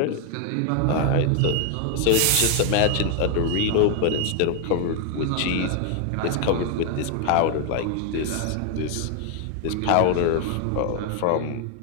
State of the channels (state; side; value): different; both; correlation 0.01